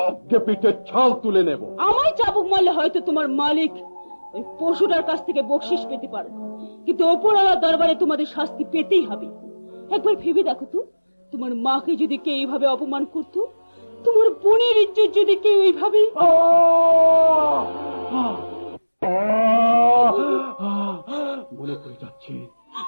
পিঠে ছাল তুলে নেব। আমায় চাবুক মারলে হয়তো তোমার মালিক ওই পশুটার কাছ থেকে বকশিস পেতে পারো, কিন্তু ওপরওয়ালার দরবারে তোমাদের শাস্তি পেতেই হবে। একবার ভেবে দেখো তো, তোমার মাকে যদি কেউ এইভাবে অপমান করতো, তোমার বোনের ইজ্জত যদি কেউ এইভাবে।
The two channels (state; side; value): inverted; both; correlation -1.00